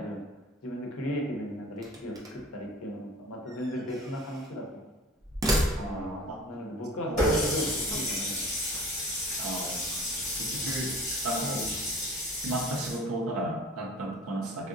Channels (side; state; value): both; normal; correlation 0.44